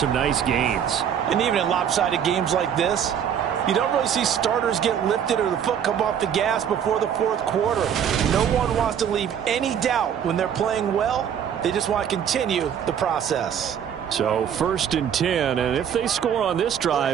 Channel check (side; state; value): left; quieter; 8.7 dB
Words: nice gains. And even in lopsided games like this, you don't really see starters get lifted or the foot come off the gas before the fourth quarter. No one wants to leave any doubt when they're playing well. They just want to continue the process. So 1st and 10, and if they score on this